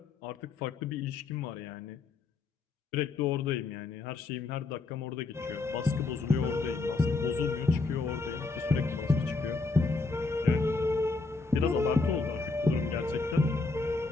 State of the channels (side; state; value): right; quieter; 3.8 dB